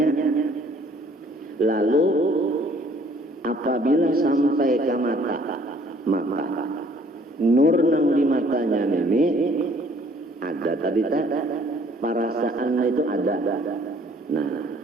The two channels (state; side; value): normal; both; correlation 0.59